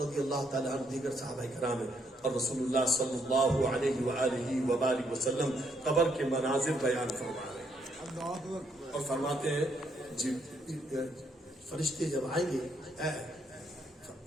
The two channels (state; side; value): normal; both; correlation 0.73